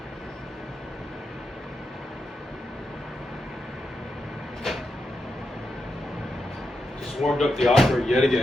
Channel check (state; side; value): normal; both; correlation 0.86